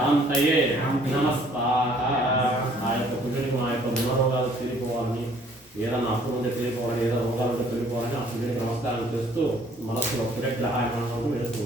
नमस्वाहा ఆయొక్క కుజుడికి మా యొక్క గుణరోగాలు తీరిపోవాలని ఏదైనా అప్పులు ఉంటే తీరిపోవాలని ఏదో రోగాలు ఉంటే తీరిపోవాలని ఆ సూర్యుడికి నమస్కారం చేస్తూ మనస్సులో సూర్యగ్రహాయమానం వేస్తూ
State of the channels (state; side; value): normal; both; correlation 0.59